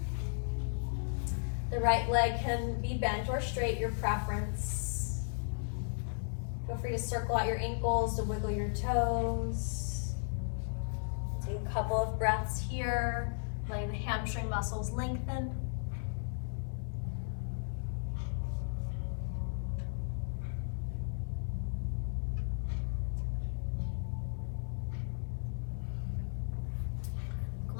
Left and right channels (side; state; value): right; silent; digital silence